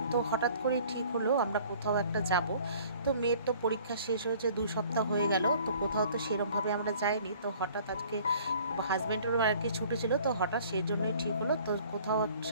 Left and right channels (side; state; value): both; inverted; correlation -0.53